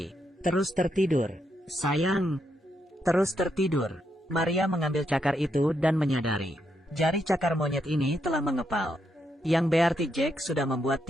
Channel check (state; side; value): normal; both; correlation 0.80